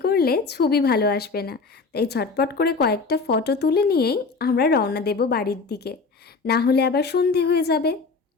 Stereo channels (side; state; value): right; quieter; 4.4 dB